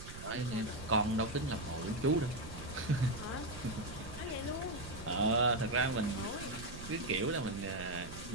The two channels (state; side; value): noise; right; rumble, 12 dB below the sound